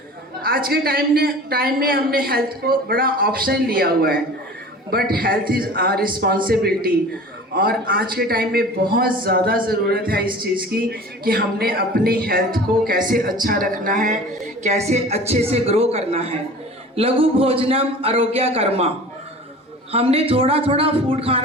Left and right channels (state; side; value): normal; both; correlation 0.40